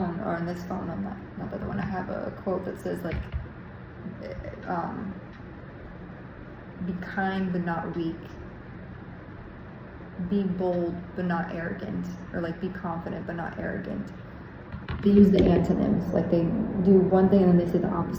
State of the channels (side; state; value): both; identical; correlation 1.00